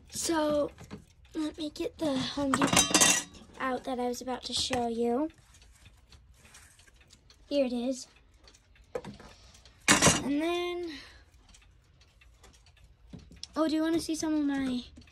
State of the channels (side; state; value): both; identical; correlation 1.00